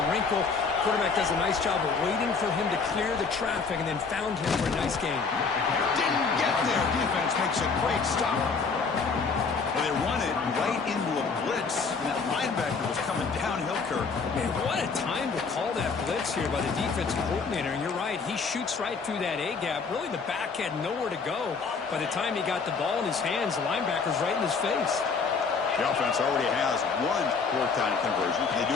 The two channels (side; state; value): right; quieter; 5.0 dB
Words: wrinkle. Quarterback does a nice job of waiting for him to clear the traffic and then found him for a nice gain. Didn't get there. Defense makes a great stop. Well, they run it right into a blitz. And that linebacker was coming downhill, Kirk. Man, what a time to call that blitz here by the defensive coordinator. And you're right, he shoots right through that A-gap. Really, the back had nowhere to go. By the time he got the ball in his hands, the linebacker's right in his face. The offense already has one fourth-down conversion. They do